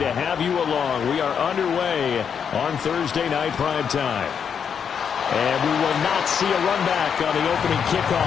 have you along. We are underway on Thursday night primetime. And we will not see a run back on the opening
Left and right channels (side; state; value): right; quieter; 7.3 dB